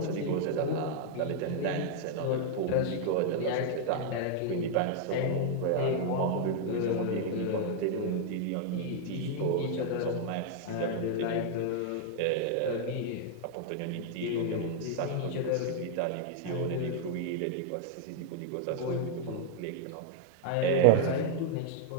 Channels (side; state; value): both; different; correlation 0.00